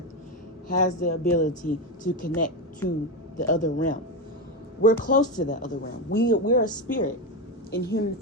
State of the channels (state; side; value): normal; both; correlation 0.12